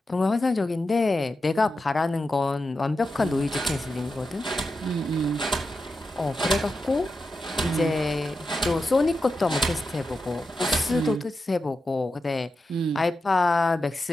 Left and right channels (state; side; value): normal; both; correlation 0.89